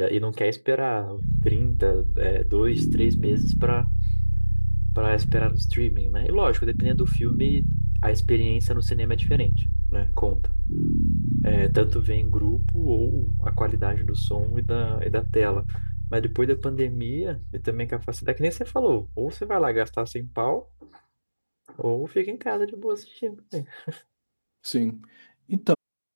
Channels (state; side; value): inverted; both; correlation -1.00